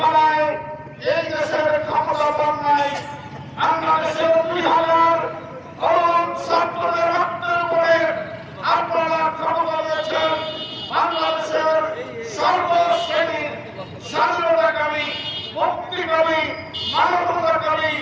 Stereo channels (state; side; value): identical; both; correlation 1.00